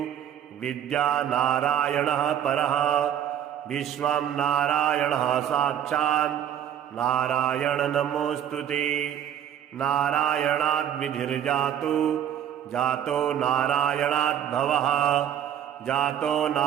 विद्या नारायणः परः विश्वं नारायणः साक्षात् नारायण नमोऽस्तुते। नारायणाद्विधिर्जातो जातो नारायणाद्भवः जातो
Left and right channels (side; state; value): left; quieter; 10.1 dB